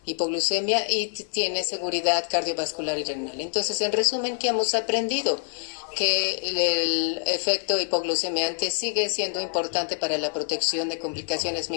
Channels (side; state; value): right; silent; 58 dB below the other